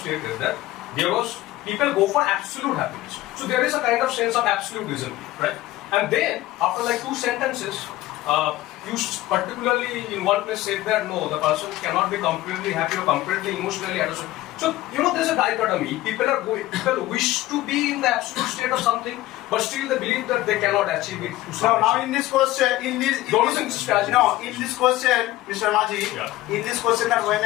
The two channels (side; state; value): right; quieter; 16.4 dB